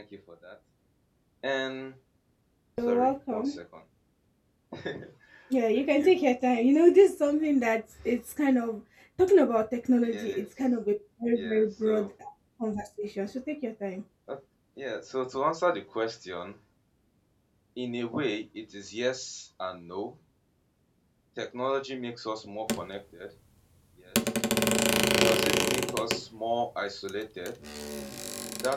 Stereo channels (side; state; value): both; identical; correlation 1.00